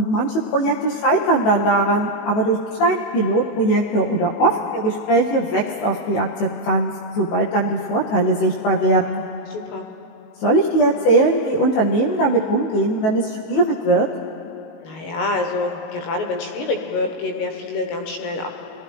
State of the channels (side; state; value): right; late; 19 ms